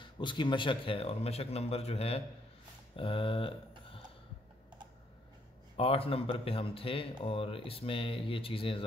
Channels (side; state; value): both; normal; correlation 0.70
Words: اس کی مشق ہے، اور مشق نمبر جو ہے 8 نمبر پہ ہم تھے، اور اس میں یہ چیزیں